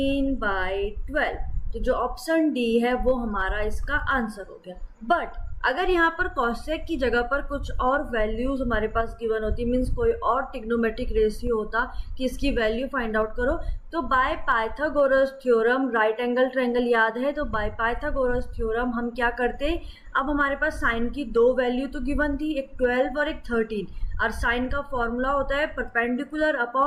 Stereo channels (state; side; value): identical; both; correlation 1.00